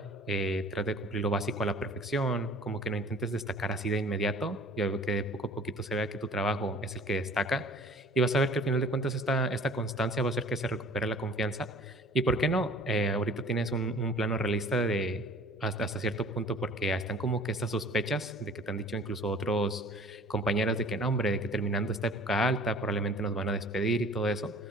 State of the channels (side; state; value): both; normal; correlation 0.49